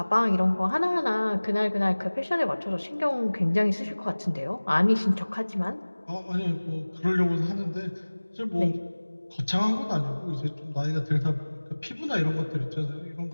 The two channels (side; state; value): both; inverted; correlation -1.00